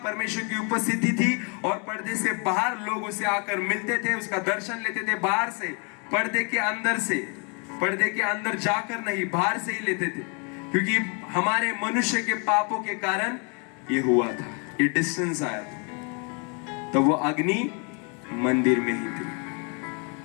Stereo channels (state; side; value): quieter; right; 35.6 dB